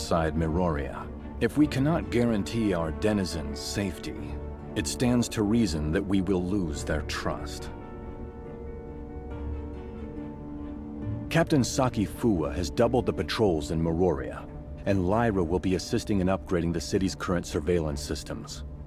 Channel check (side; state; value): both; identical; correlation 1.00